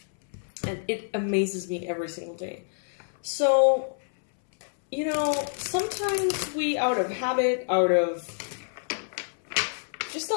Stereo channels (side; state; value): right; silent; 60 dB below the other